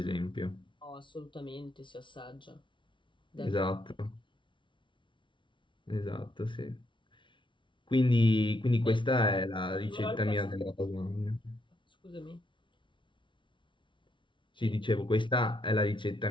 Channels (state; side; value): late; right; 0.24 ms